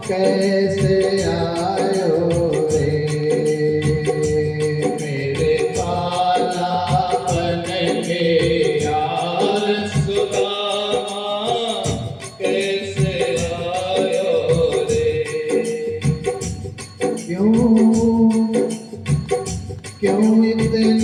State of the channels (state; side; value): identical; both; correlation 1.00